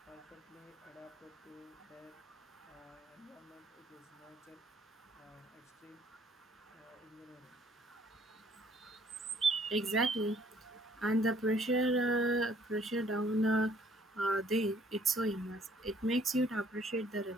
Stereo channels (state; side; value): normal; both; correlation 0.61